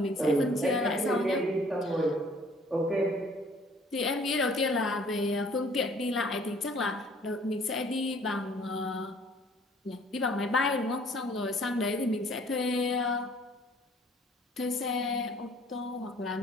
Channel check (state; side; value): normal; both; correlation 0.56